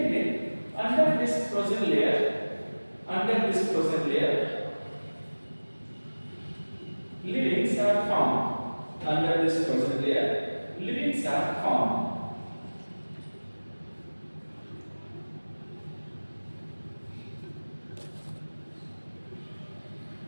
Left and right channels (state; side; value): inverted; both; correlation -1.00